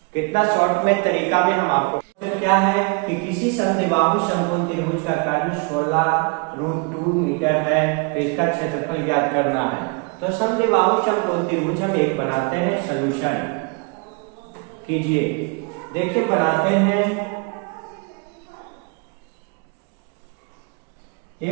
कितना शॉर्ट में तरीका में हम आपको क्या है कि किसी समद्विबाहु समकोण त्रिभुज का कर्ण 16√2 मीटर है, तो इसका क्षेत्रफल ज्ञात करना है। तो समद्विबाहु समकोण त्रिभुज हम एक बनाते हैं, सॉल्यूशन कीजिए। देखिए बनाते हैं, ये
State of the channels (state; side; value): quieter; left; 31.1 dB